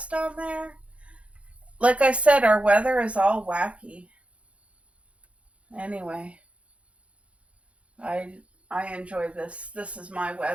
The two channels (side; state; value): left; late; 0.062 ms